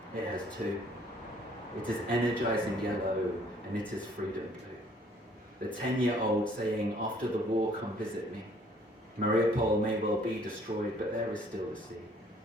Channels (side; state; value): both; normal; correlation 0.60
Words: it has two. It is energising yellow, and it is freedom blue. The 10-year-old saying, after the war, come visit me. Mariupol may well be destroyed, but there is still the sea.